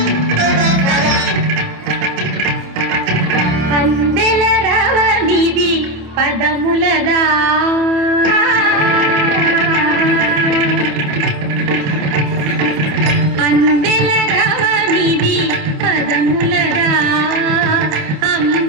పదములదా అందెల రవనిది పదములదా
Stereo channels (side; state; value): left; late; 27 ms